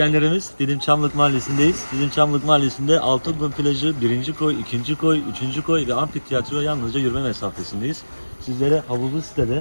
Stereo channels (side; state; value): both; inverted; correlation -1.00